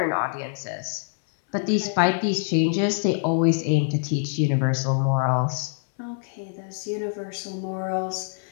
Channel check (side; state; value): right; silent; digital silence